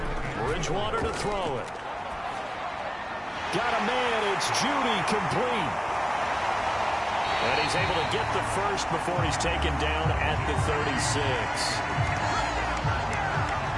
Bridgewater to throw it. Got a man, it's Judy, complete. he's able to get the first before he's taken down at the 36.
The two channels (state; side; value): identical; both; correlation 1.00